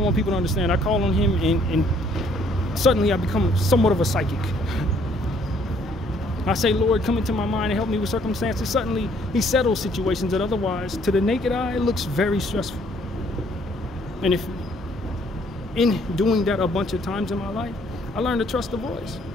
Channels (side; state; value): both; normal; correlation 0.64